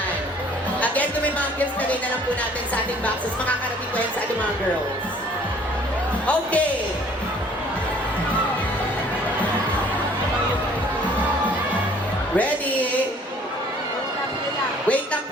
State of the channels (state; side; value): normal; both; correlation 0.56